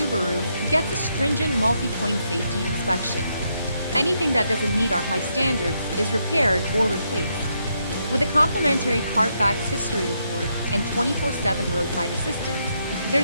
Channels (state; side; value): inverted; both; correlation -0.78